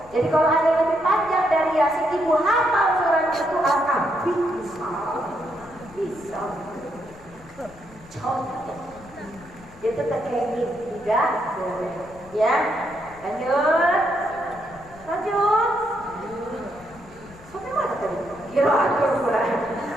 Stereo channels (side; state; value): left; noise; rumble, 22 dB below the sound